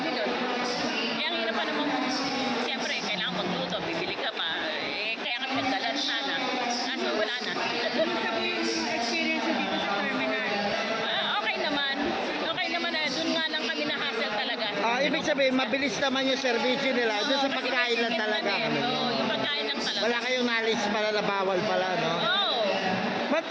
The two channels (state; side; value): identical; both; correlation 1.00